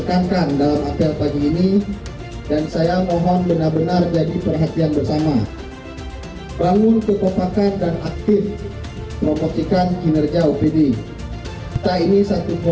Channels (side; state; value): both; identical; correlation 1.00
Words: dalam apel pagi ini, dan saya mohon benar-benar jadi perhatian bersama. Bangun kekompakan dan aktif promosikan kinerja OPD. Kita ini satu